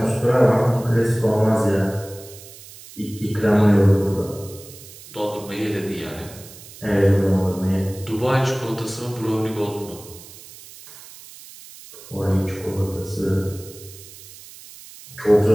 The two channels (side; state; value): right; noise; hiss, 18 dB below the sound